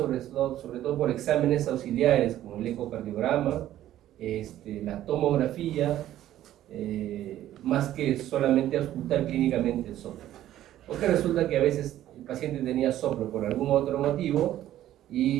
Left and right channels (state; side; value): quieter; left; 12.9 dB